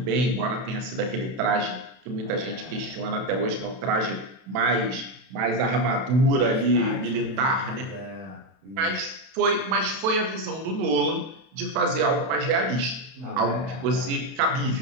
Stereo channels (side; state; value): left; late; 31 ms